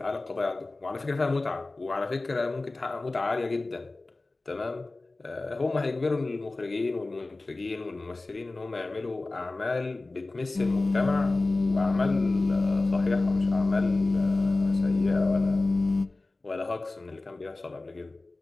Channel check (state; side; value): quieter; right; 3.2 dB